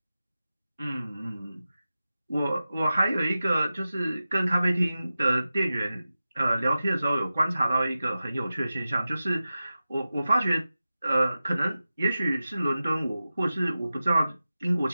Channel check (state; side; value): inverted; both; correlation -0.94